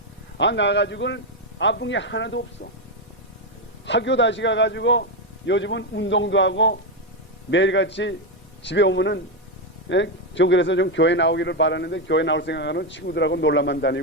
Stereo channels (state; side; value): normal; both; correlation 0.06